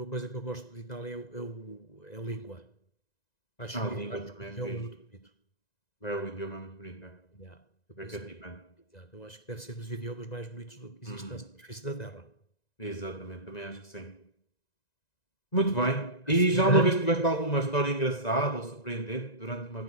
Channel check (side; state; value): right; late; 1.9 ms